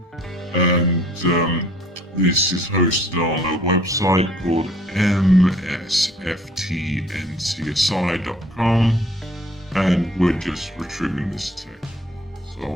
And this is hosted on a website called msftncsi.com, and we're just retrieving this text. So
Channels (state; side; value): normal; both; correlation 0.55